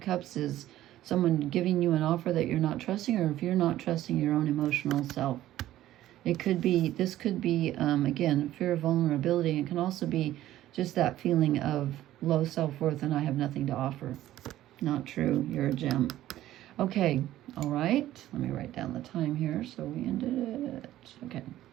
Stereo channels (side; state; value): left; quieter; 13.9 dB